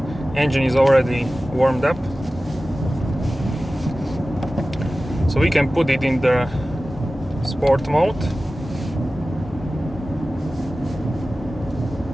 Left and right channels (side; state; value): both; normal; correlation 0.96